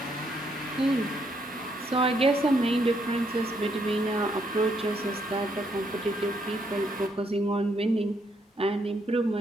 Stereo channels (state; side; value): normal; both; correlation 0.74